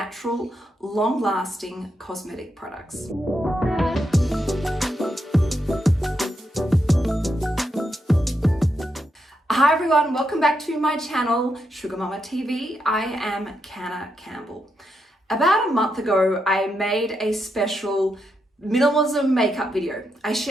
long-lasting cosmetic products. Hi everyone, welcome back to my channel, Sugar Mama TV. I am Canna Campbell. About a month ago, I made a special minimalism makeup video. I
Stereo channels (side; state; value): both; normal; correlation 0.82